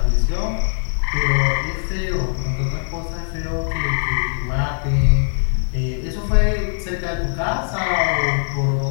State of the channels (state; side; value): silent; right; 65 dB below the other